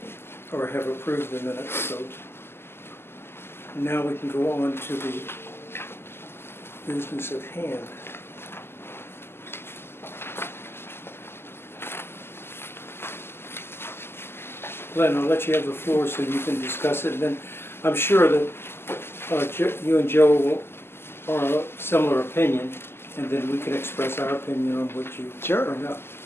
Or have approved the minutes, so now we can go on to the business at hand. Glenn, I'll let you have the floor so you can discuss it, and then I'm sure that you and Joe are of similar opinion, and then we can express our opinion on what you Sure. bring up.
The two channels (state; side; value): late; right; 0.12 ms